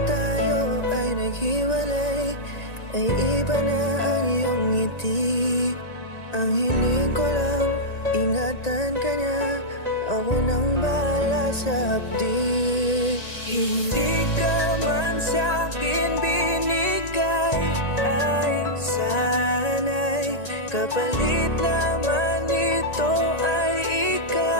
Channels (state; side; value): late; right; 1.9 ms